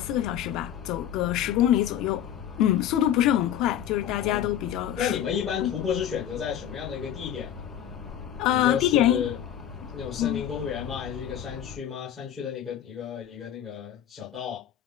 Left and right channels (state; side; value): quieter; right; 10.6 dB